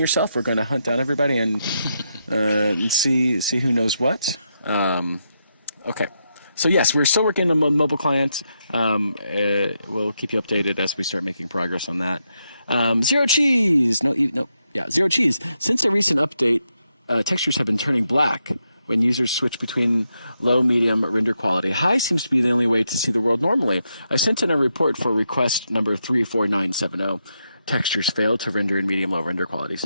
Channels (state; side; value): inverted; both; correlation -0.83